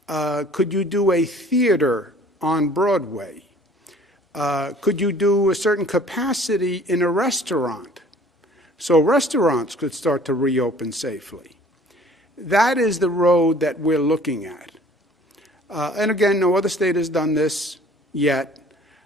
Could you do a theater on Broadway? Could you do a certain capacity in a restaurant so restaurants could start to reopen safely? That is the road that we're looking at. And again, no other state has done this yet.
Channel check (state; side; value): normal; both; correlation 0.52